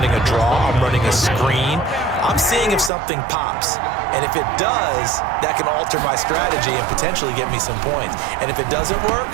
a draw. I'm running a screen. I'm seeing if something pops. And if it does, that can alter my strategy and potentially get me some points. And if it doesn't work,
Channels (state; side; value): drops out; left; at 2.9 s